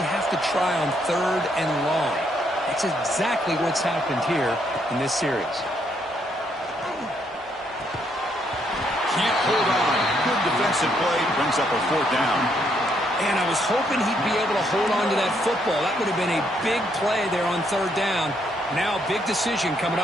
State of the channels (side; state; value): both; normal; correlation 0.73